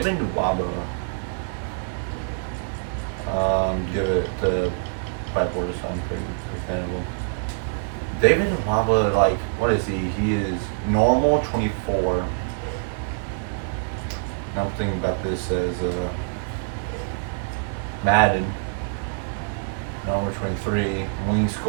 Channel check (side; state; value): left; silent; digital silence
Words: Nwaba. Give it to Pipe Order, so I'm pretty understandable. David Nwaba, like, what is he? He is normal 24. I'm thinking about this as Madden. Normal 23. Wing